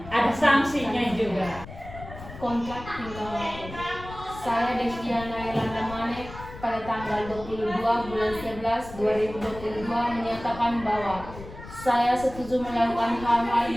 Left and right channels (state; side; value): noise; left; rumble, 14 dB below the sound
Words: ada sanksinya juga. Kontrak tinggal waktu. Saya Desiana Yolanda Manek pada tanggal 22 bulan 11 2022 menyatakan bahwa saya setuju melakukan hal-hal